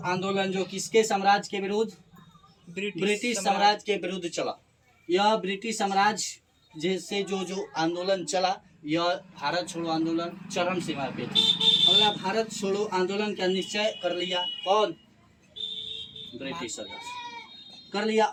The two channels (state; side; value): identical; both; correlation 1.00